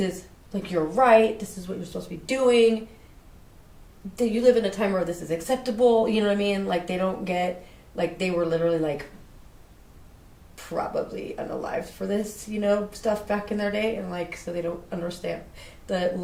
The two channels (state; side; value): identical; both; correlation 1.00